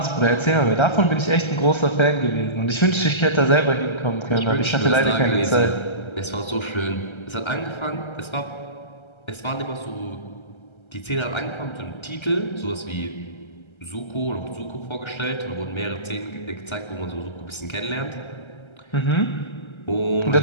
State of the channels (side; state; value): right; late; 1.3 ms